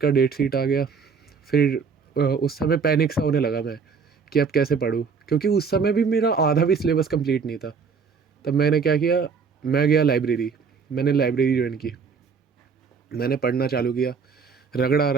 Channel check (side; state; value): left; quieter; 5.5 dB